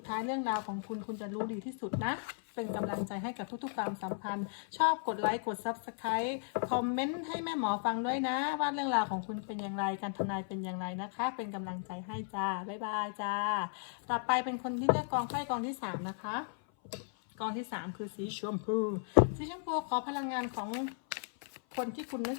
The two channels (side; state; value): right; silent; 54 dB below the other